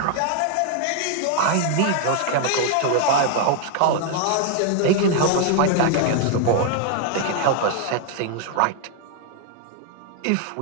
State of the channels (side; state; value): both; different; correlation 0.00